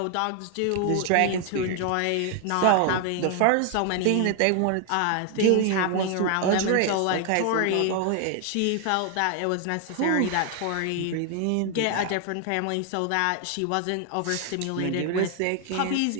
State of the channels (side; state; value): both; different; correlation 0.00